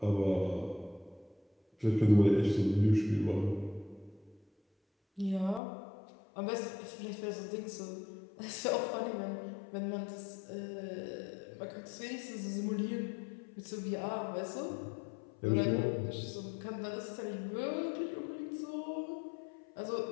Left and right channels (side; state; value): right; drops out; at 5.6 s